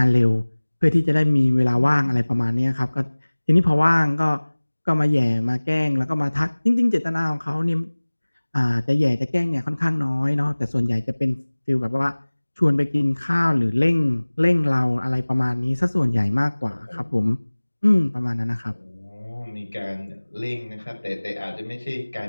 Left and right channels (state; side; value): inverted; both; correlation -1.00